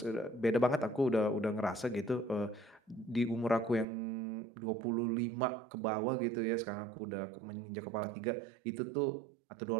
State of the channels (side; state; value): left; drops out; at 3.9 s